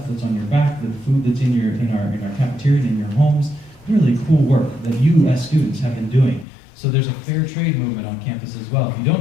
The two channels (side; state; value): right; drops out; at 6.5 s